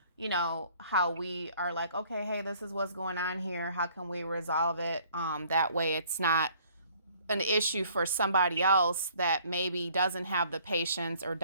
how we are like, okay, hey, this is what's going on here. How can we resolve it? That way it's not an issue for somebody else that maybe doesn't have the patience or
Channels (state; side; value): inverted; both; correlation -0.58